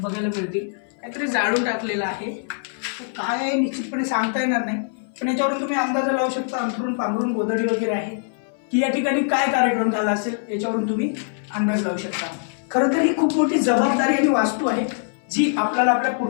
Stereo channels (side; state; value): right; silent; 59 dB below the other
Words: मिळतील. काहीतरी जाळून टाकलेलं आहे. काय आहे निश्चितपणे सांगता येणार नाही, पण याच्यावरून तुम्ही अंदाज लावू शकता. अंथरून पांघरून गोधडी वगैरे आहे की या ठिकाणी काय कार्यक्रम झाला असेल याच्यावरून तुम्ही अंदाज लावू शकता. खरं तर ही खूप मोठी जबाबदारी आणि वास्तू आहे जी आपल्याला आपल्या